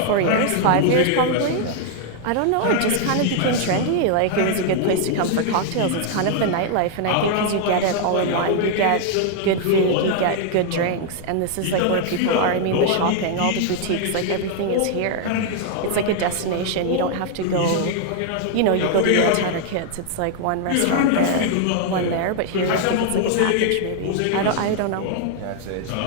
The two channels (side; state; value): both; different; correlation 0.00